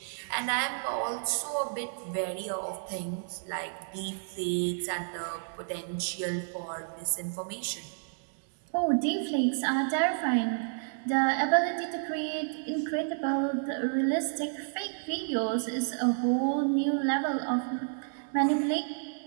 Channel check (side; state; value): left; silent; digital silence